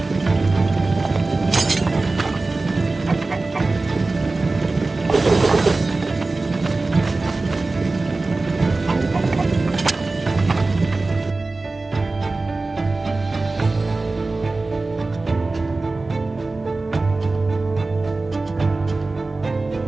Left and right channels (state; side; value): quieter; left; 3.4 dB